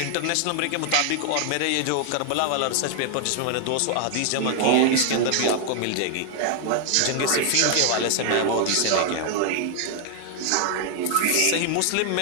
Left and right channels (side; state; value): both; different; correlation 0.00